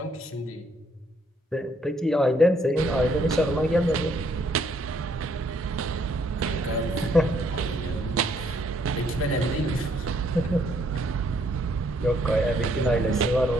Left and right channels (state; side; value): normal; both; correlation 0.68